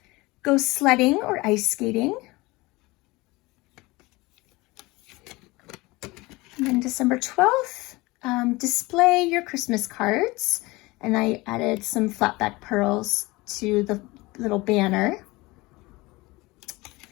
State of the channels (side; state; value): right; quieter; 22.2 dB